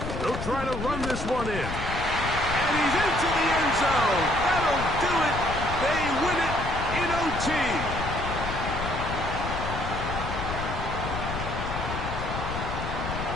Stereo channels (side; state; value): left; noise; rumble, 6 dB below the sound